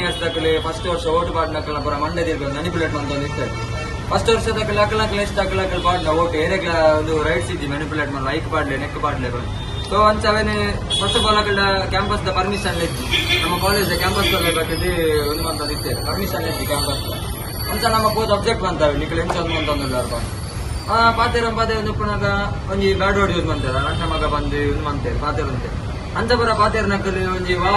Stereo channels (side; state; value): both; identical; correlation 1.00